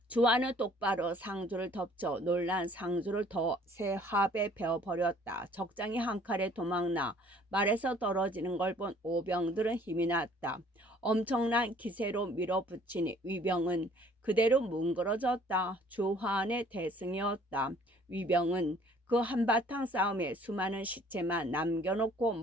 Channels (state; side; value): normal; both; correlation 0.56